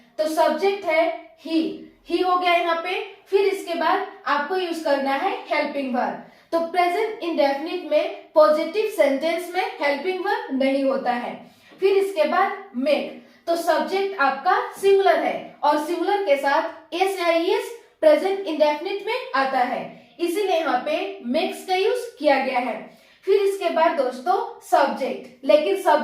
तो सब्जेक्ट है ही हो गया यहाँ पे। फिर इसके बाद आपको यूज करना है हेल्पिंग वर्ब। तो प्रेजेंट इंडेफिनिट में पॉजिटिव सेंटेंस में हेल्पिंग वर्ब नहीं होता है। फिर इसके बाद मेक, तो सब्जेक्ट आपका सिंगुलर है, और सिंगुलर के साथ एस या ईएस प्रेजेंट इंडेफिनिट में आता है, इसीलिए यहाँ पे मेक्स का यूज किया गया है। फिर इसके बाद दोस्तों सब्जेक्ट, लेकिन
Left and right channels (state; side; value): identical; both; correlation 1.00